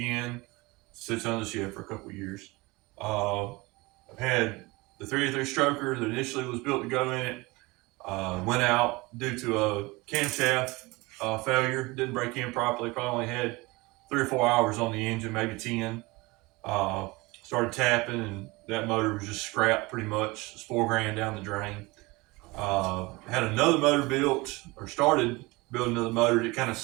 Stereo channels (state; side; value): quieter; left; 23.4 dB